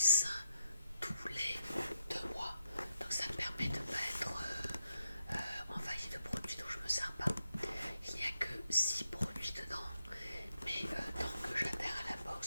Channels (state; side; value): inverted; both; correlation -0.84